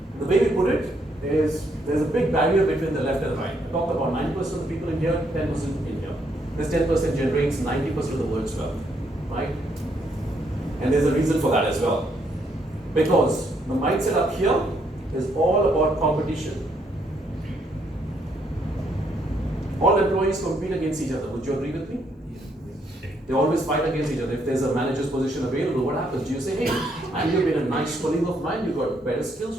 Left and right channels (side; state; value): both; normal; correlation 0.73